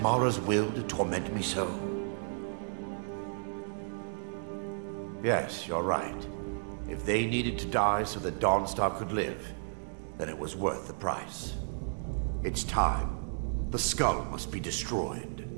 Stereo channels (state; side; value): silent; left; digital silence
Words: will to torment me so? Yes, you're right. If they needed to die so that Dawnstar could live, then it was worth the price. It's time. The skull must be destroyed.